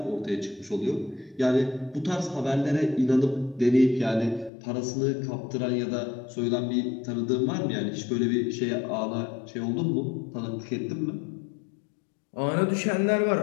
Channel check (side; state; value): right; drops out; at 4.5 s